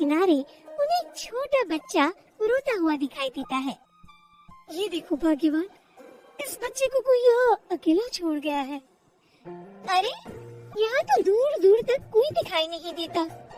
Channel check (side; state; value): both; identical; correlation 1.00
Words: उन्हें एक छोटा बच्चा रोता हुआ दिखाई देता है। ये देखो भाग्यवान, इस बच्चे को कोई यहाँ अकेला छोड़ गया है। अरे यहाँ तो दूर दूर तक कोई दिखाई नहीं देता।